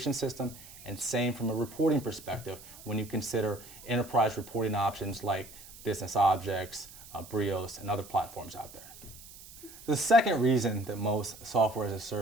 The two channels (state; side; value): noise; right; hiss, 18 dB below the sound